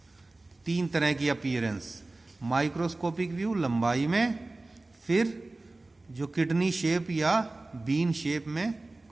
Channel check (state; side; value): quieter; left; 3.0 dB